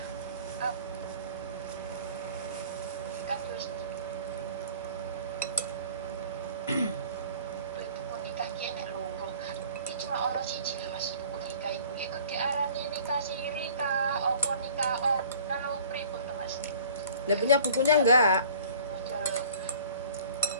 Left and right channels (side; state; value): both; inverted; correlation -0.49